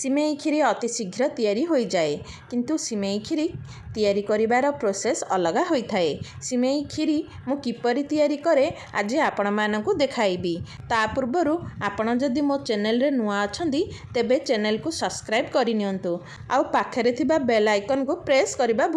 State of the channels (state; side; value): identical; both; correlation 1.00